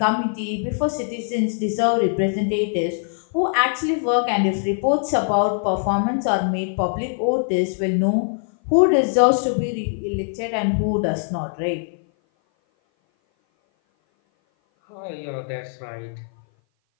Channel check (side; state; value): right; silent; 57 dB below the other